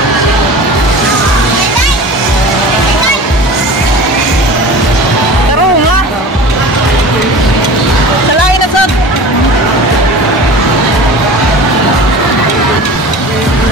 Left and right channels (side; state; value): both; normal; correlation 0.37